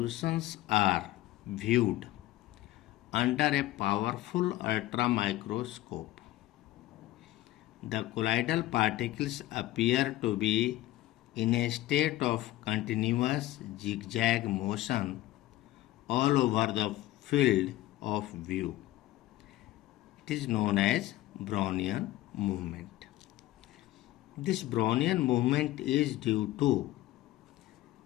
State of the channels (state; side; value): quieter; right; 15.8 dB